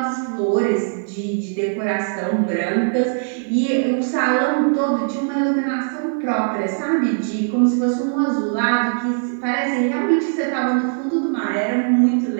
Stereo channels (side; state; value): left; silent; 62 dB below the other